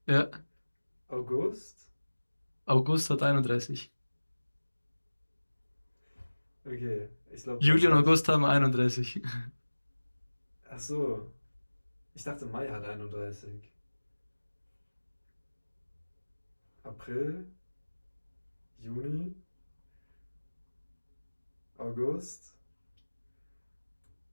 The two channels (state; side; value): inverted; both; correlation -1.00